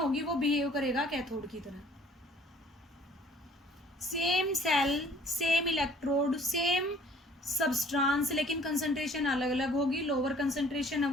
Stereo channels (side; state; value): both; normal; correlation 0.55